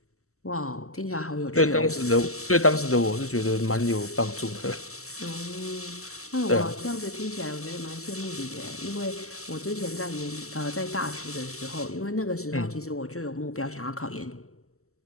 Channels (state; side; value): late; right; 0.63 ms